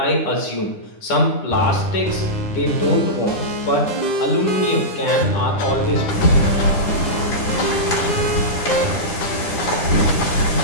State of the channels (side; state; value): right; late; 9.9 ms